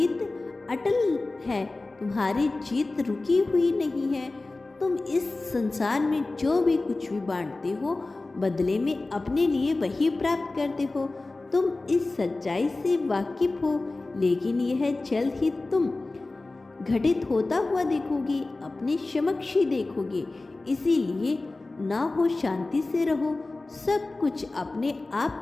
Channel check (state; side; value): quieter; right; 3.2 dB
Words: अटल है, तुम्हारी जीत रुकी हुई नहीं है। तुम इस संसार में जो भी कुछ भी बांटते हो, बदले में अपने लिए वही प्राप्त करते हो। तुम इस सच्चाई से वाकिफ हो, लेकिन यह जल्द ही तुम घटित होता हुआ देखोगे, अपने समक्ष ही देखोगे। इसीलिए ना हो शांति से रहो, सब कुछ अपने